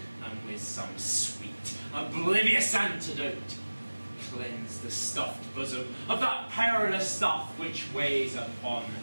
and with some sweet, oblivious antidote, cleanse the stuffed bosom of that perilous stuff which weighs upon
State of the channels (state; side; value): inverted; both; correlation -1.00